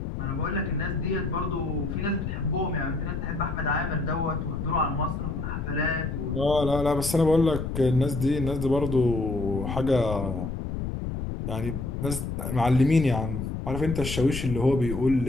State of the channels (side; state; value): left; noise; rumble, 4 dB below the sound